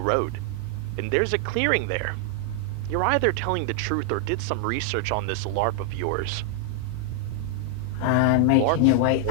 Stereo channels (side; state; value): both; different; correlation -0.01